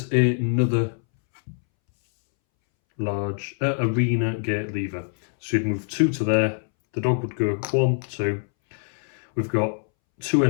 another large arena gate lever. So you'd move 2 to there. The dog would go 1, 2. We've got 2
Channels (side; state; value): right; silent; 63 dB below the other